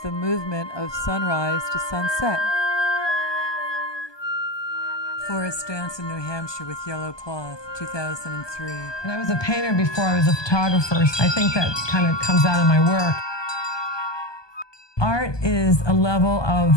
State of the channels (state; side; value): late; right; 1.2 ms